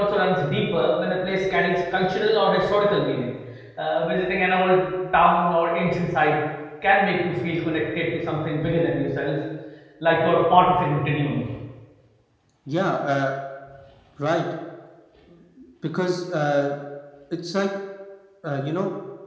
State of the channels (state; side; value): identical; both; correlation 1.00